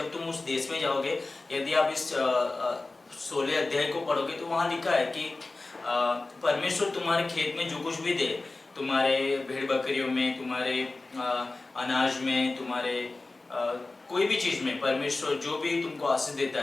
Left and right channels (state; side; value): quieter; right; 3.3 dB